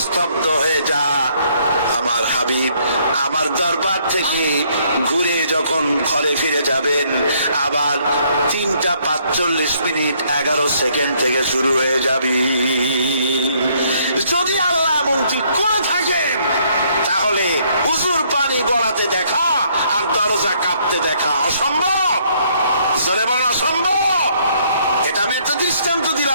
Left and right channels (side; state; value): both; inverted; correlation -0.67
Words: স্তব্ধ হয়ে যা। আমার হাবিব আমার দরবার থেকে ঘুরে যখন ঘরে ফিরে যাবেন, আবার 3:45 11 সেকেন্ড থেকে শুরু হয়ে যাবে। যদি আল্লাহ এমনটি করে থাকেন, তাহলে উজুর পানি গড়াতে দেখা আর দরজা কাঁপতে দেখা অসম্ভব। জোরে বল অসম্ভব। এটা আমি একটা দৃষ্টান্ত